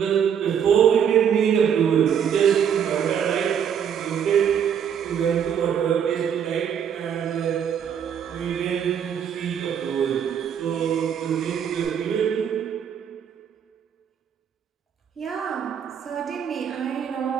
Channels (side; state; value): left; quieter; 8.2 dB